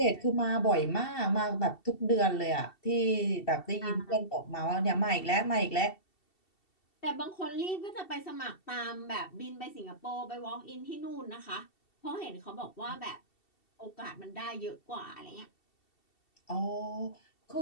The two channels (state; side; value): late; right; 2.7 ms